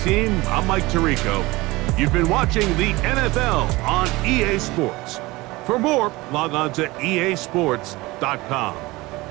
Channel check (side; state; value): left; quieter; 21.2 dB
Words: team. I'm Mike Tirico. You've been watching the NFL on EA Sports. For more, log on to easports.com.